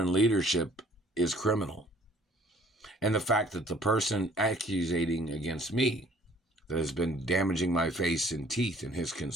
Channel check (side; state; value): both; normal; correlation 0.57